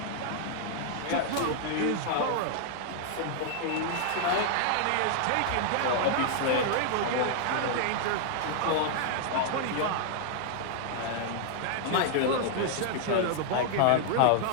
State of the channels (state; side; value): different; both; correlation -0.01